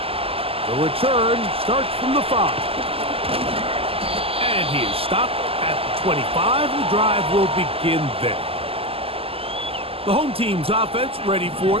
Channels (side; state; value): left; late; 0.28 ms